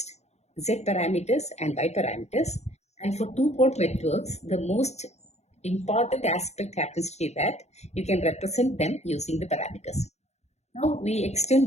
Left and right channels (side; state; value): right; late; 0.32 ms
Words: Z parameters and Y parameters. And for two-port networks, the most important aspect happens to be that you can represent them using the parameters. Now, we